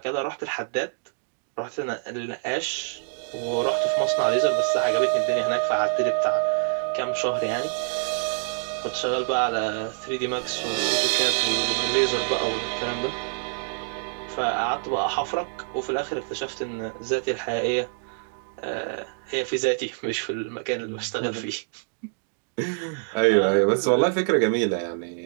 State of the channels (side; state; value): left; silent; digital silence